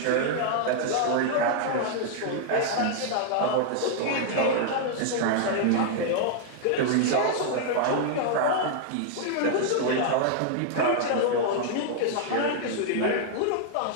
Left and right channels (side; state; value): both; different; correlation -0.01